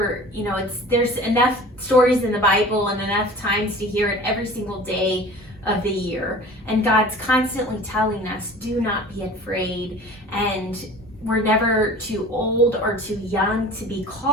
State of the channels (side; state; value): both; normal; correlation 0.42